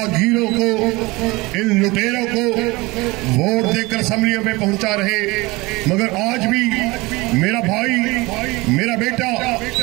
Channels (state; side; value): quieter; left; 22.9 dB